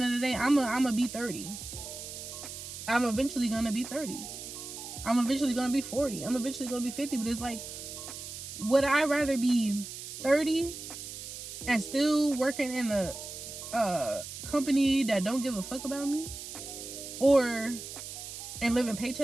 of the day, I'm gonna be 30. I'm eventually gonna be 30. I'm eventually gonna be 40. I'm eventually gonna be 50. But it's like, would I rather be 30 and still working in a company that don't give a fuck about me, and living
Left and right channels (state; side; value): noise; right; hiss, 10 dB below the sound